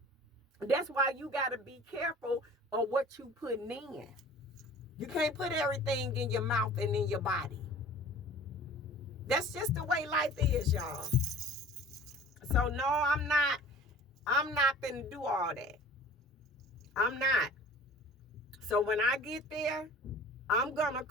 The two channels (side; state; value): both; normal; correlation 0.45